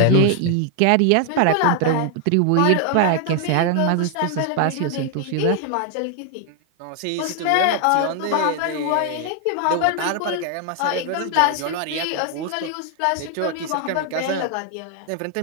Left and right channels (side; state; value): both; different; correlation 0.00